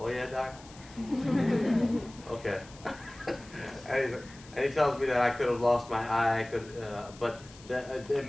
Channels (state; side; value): noise; left; hiss, 21 dB below the sound